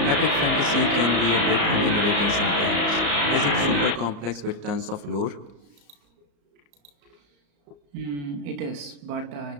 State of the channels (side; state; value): left; late; 34 ms